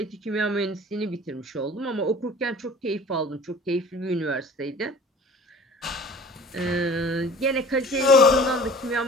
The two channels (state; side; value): normal; both; correlation 0.45